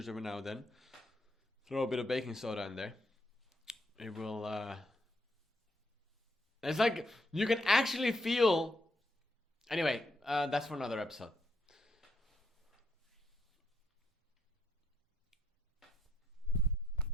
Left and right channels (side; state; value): both; normal; correlation 0.75